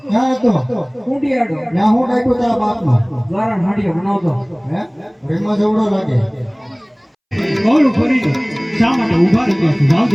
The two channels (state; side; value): identical; both; correlation 1.00